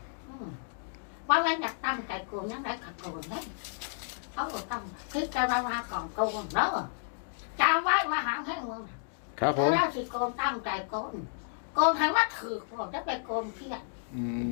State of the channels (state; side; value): silent; right; digital silence